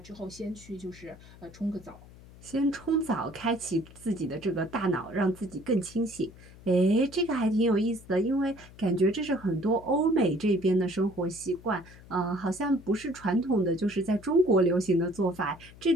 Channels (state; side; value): noise; left; hum, 21 dB below the sound